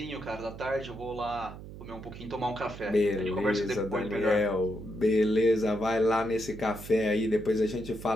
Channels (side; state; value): right; noise; hum, 13 dB below the sound